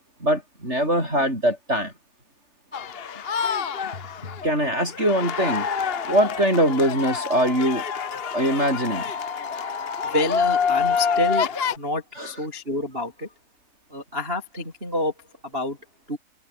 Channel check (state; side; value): late; left; 3.4 ms